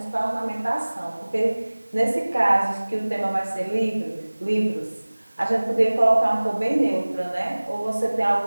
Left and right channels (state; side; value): inverted; both; correlation -1.00